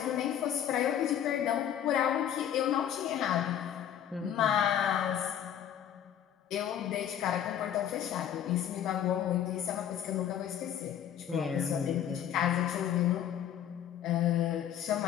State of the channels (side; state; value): right; quieter; 10.0 dB